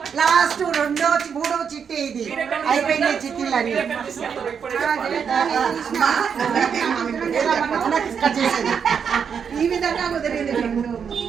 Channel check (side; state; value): left; quieter; 6.9 dB